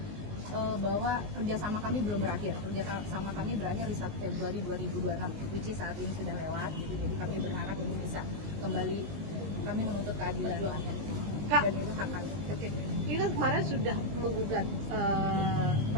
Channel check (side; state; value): left; late; 19 ms